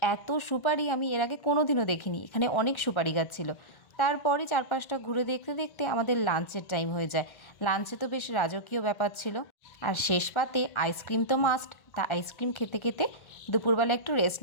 এত সুপারি আমি এর আগে কোনো দিনও দেখিনি। এখানে অনেক সুপারি গাছ ছিল। তারপরে চারপাশটা ঘুরে দেখতে দেখতে আমাদের লাঞ্চের টাইম হয়ে যায়। লাঞ্চে তো বেশ রাজকীয় ব্যাপার ছিল। আর শেষ পাতে আইসক্রিম তো মাস্ট। তা আইসক্রিম খেতে খেতে দুপুরবেলা একটু রেস্ট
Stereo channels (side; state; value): right; late; 1.3 ms